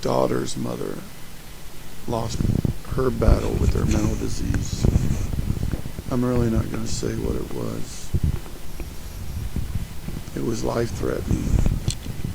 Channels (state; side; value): identical; both; correlation 1.00